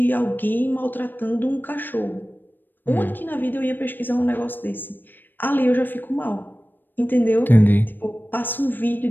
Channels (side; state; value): right; late; 0.093 ms